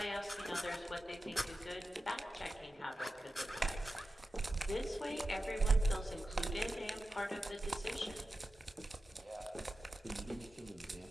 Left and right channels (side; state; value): both; normal; correlation 0.92